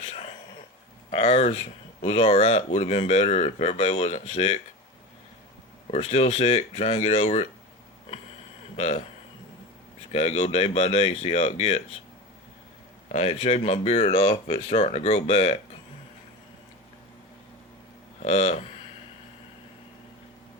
Ours was alright, would have been better if everybody wasn't sick. We're still sick, trying to get over it. Just gotta go day by day, see how it gets. I had shaved my beard off, but it's starting to grow back.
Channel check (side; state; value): both; normal; correlation 0.27